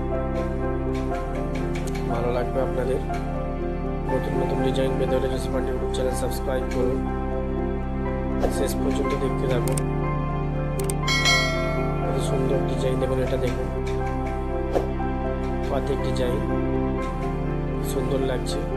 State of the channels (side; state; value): both; identical; correlation 1.00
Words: ভালো লাগবে আপনাদের। নতুন নতুন ডিজাইন পেতে হলে জসি পান্ডে ইউটিউব চ্যানেল সাবস্ক্রাইব করুন, শেষ পর্যন্ত দেখতে থাকুন। কত সুন্দর ডিজাইন দেখুন। এটা দেখুন পাতের ডিজাইন, সুন্দর লাগছে।